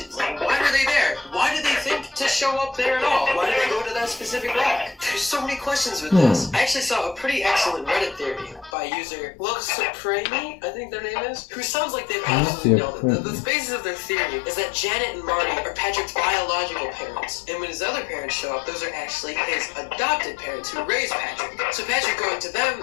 Like, why were they there? Why did they think to show up there at all? Why did they go to that specific rock? There's so many questions with this. I actually saw a pretty excellent Reddit theory by user Love Supreme, I think their name is, who sounds like they've absolutely nailed it. The basis of their theory is that Janet and Marty are Patrick's biological parents, and when his other parents show up, those are actually his adopted parents who raised Patrick. So Patrick going to them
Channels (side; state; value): right; drops out; at 8.7 s